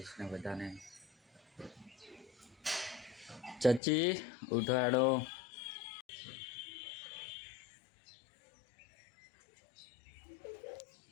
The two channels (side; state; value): right; drops out; at 3.8 s